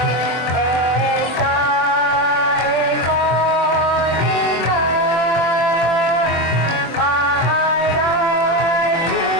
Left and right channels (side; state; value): right; late; 24 ms